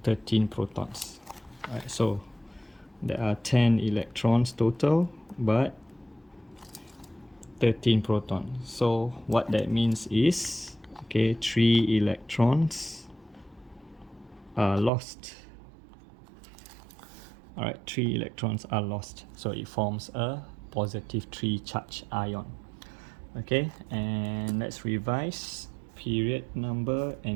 13 protons. Alright, so there are 10 electrons total but 13 protons. So what that means is, okay, 3 electrons are lost. Alright, 3 electrons are lost, so it forms a positive 3 charge ion. Okay, and let's revise period number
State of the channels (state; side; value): drops out; left; at 14.9 s